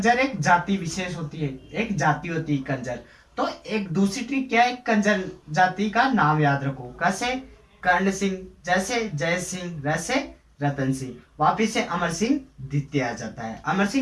एक जाति विशेष होती है, एक जाति होती है कंजर। तो एक दूसरी ट्रिक क्या है? कंजर जाति का नाम याद रखो। कैसे? कर्ण सिंह, जैसे जय सिंह, वैसे रतन सिंह। वापिस से अमर सिंह द्वितीय आ जाता है, अमर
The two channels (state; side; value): identical; both; correlation 1.00